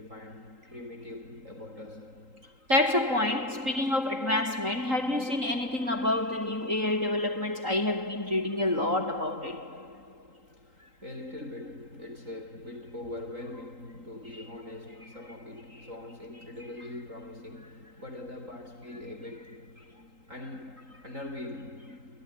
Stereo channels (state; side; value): late; left; 3.8 ms